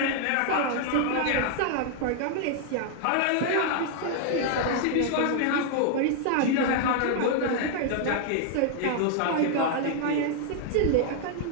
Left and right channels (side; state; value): both; different; correlation 0.00